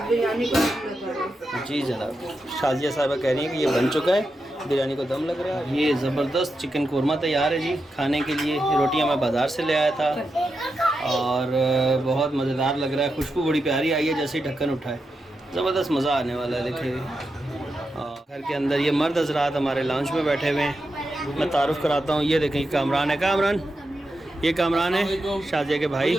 बिरयानी को जी जनाब, शाजिया साहबा कह रही हैं कि ये बन चुका है, बिरयानी को दम लग रहा है। ये ज़बरदस्त चिकन कोरमा तैयार है जी खाने के लिए। रोटियाँ मैं बाज़ार से ले आया था और बहुत मज़ेदार लग रहा है, खुशबू बड़ी प्यारी आई है जैसे ही ढक्कन उठाए, ज़बरदस्त मज़ा आने वाला है। देखिए घर के अंदर ये मर्द हजरात हमारे लॉन्च में बैठे हुए हैं, मैं तारुफ कराता हूँ। ये देखें कामरान है, कामरान ये कामरान है शाजिया के भाई,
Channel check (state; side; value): normal; both; correlation 0.88